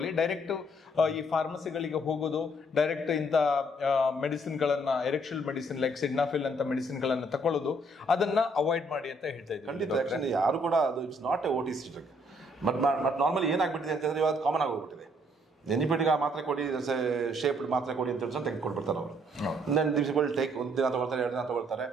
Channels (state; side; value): normal; both; correlation 0.67